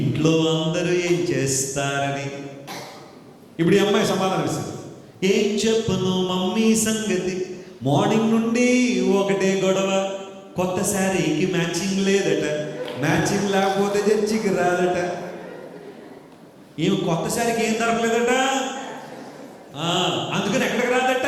అందరూ ఏం చేస్తారని. ఇప్పుడు ఈ అమ్మాయి సమాధానం ఇస్తుంది, ఏం చెప్పను మమ్మీ సంగతి, మార్నింగ్ నుండి ఒకటే గొడవ, కొత్త శారీకి మ్యాచింగ్ లేదట, మ్యాచింగ్ లేకపోతే చర్చికి రాదట. ఏమి కొత్త శారీకి ఏం దొరకలేదట, అందుకని ఎక్కడికి రాదట.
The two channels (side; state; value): both; identical; correlation 1.00